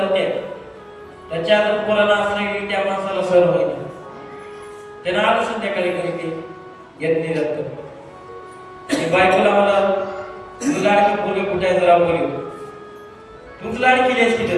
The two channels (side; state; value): both; identical; correlation 1.00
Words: त्याच्या जर पोराला असलं की त्या माणसाला सण होईना. त्यानं आलं संध्याकाळी घरी ते येत नाही जात. बायकोला मला तुझं लाडकी पोरगे कुठे आहे जरा बोलू, तूच लाड केली असती